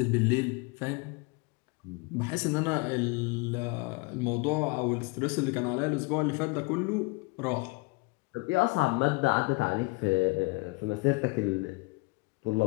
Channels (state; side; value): quieter; right; 27.2 dB